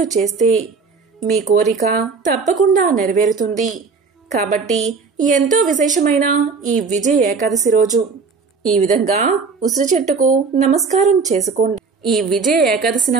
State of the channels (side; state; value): left; quieter; 4.9 dB